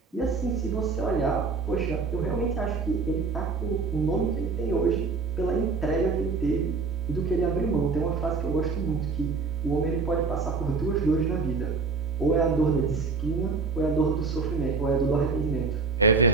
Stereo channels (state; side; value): quieter; left; 4.5 dB